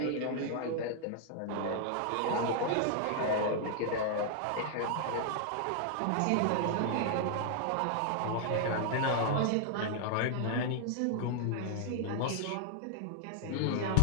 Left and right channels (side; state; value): both; different; correlation 0.00